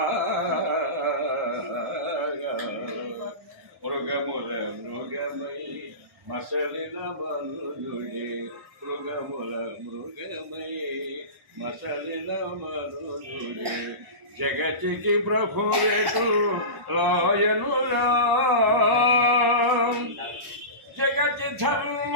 మృగముల మృగమై మసలిన మనుజుడే మృగముల మృగమై మసలిన మనుజుడే జగతికి ప్రభువేటు రాయనురా జగతి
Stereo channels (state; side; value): late; left; 1.1 ms